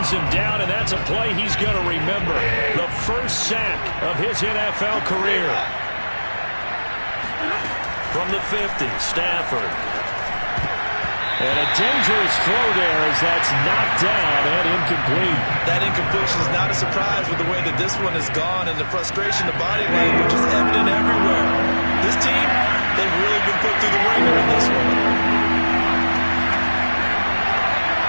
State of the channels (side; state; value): both; inverted; correlation -1.00